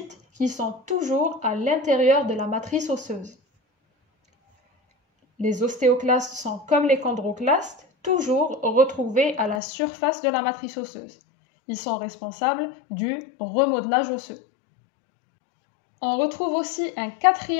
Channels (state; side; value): drops out; right; at 9.6 s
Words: qui sont toujours à l'intérieur de la matrice osseuse. Les ostéoclastes sont comme les chondroclastes, toujours retrouvés à la surface de la matrice osseuse. Ils sont responsables du remodelage osseux. On retrouve aussi un